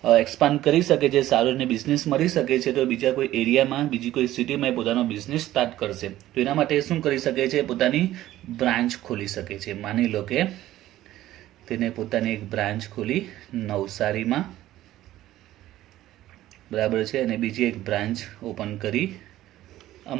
એક્સપાન્ડ કરી શકે છે, સારો એને બિઝનેસ મળી શકે છે, તો બીજા કોઈ એરિયામાં બીજી કોઈ સિટીમાં પોતાનો બિઝનેસ સ્ટાર્ટ કરશે. તો એના માટે શું કરી શકે છે? પોતાની બ્રાન્ચ ખોલી શકે છે. માની લો કે તેને પોતાની એક બ્રાન્ચ ખોલી નવસારીમાં, બરાબર છે, અને બીજી એક બ્રાન્ચ ઓપન કરી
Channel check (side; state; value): left; quieter; 14.5 dB